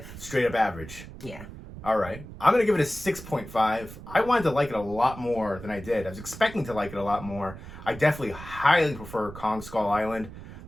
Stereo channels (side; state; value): right; noise; rumble, 14 dB below the sound